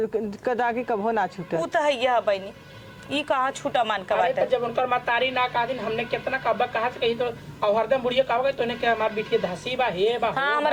कदागी कभो ना छूटे। ऊ तो है यह बहनी ई कहाँ छूटा मान का अरे बात है। तो जब उनकर मातारी ना कहा दिन हमने कितना कब्बा कहा से कही तो और हरदम बुढ़िया कहा गई तूने क्या हमार बिटिया धसी बा हे बा हाँ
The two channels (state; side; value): identical; both; correlation 1.00